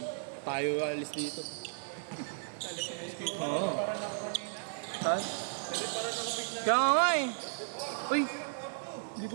tayo alis dito. Oo. Ha? Kaya nga eh. Uy! Hindi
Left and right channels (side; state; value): left; silent; digital silence